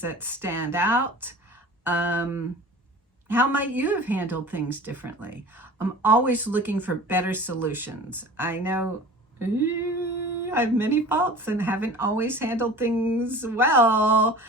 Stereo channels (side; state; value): both; normal; correlation 0.40